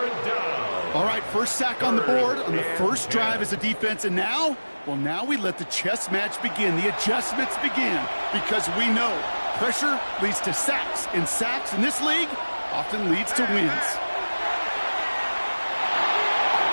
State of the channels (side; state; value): both; inverted; correlation -1.00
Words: All right, first sack on the board on the first drive as a defense, and now we let the chess match begin, the adjustments begin, because we know pressure leads to sacks, and sacks in this league often leads to wins.